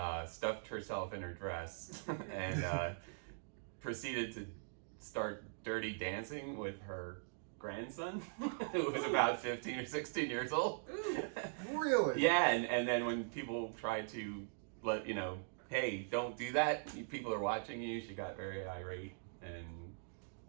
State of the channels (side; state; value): left; silent; digital silence